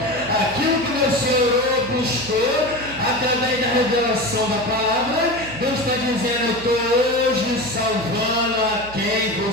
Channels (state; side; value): noise; right; hum, 16 dB below the sound